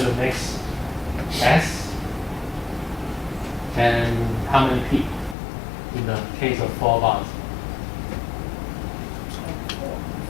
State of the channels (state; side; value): drops out; right; at 5.4 s